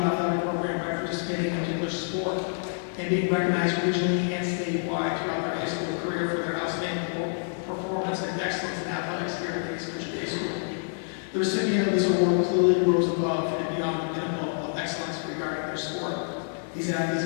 Athletic Program by participating in a particular sport and being recognized regionally and statewide throughout their high school career for their outstanding performance and excellence in athletics here at East Country Day School. The recipient of this award clearly rose above and beyond the pinnacle of excellence regarding their sport. These athletes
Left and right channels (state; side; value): silent; right; 60 dB below the other